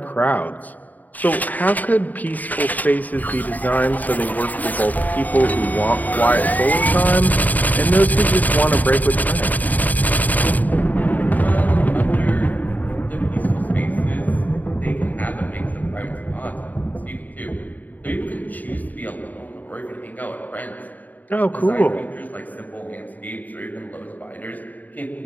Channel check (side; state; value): right; late; 0.081 ms